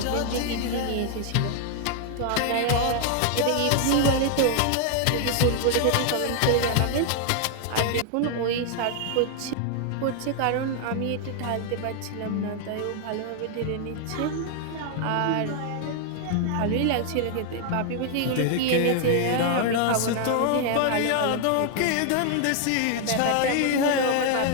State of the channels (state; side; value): different; both; correlation 0.00